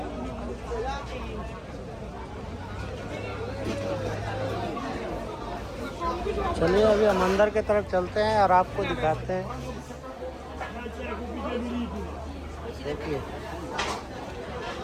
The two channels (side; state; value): both; identical; correlation 1.00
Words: चलिए अभी हम अंदर की तरफ चलते हैं और आपको दिखाते हैं। देखिए